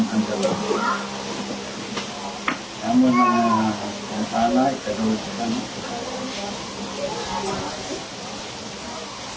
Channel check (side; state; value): both; identical; correlation 1.00